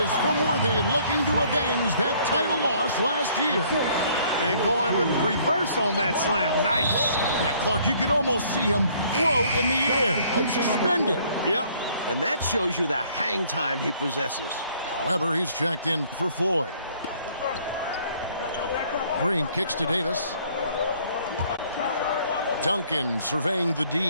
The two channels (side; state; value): both; inverted; correlation -0.61